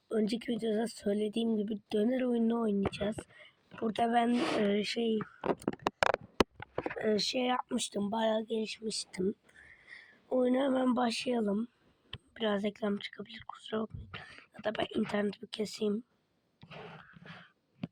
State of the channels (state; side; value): identical; both; correlation 1.00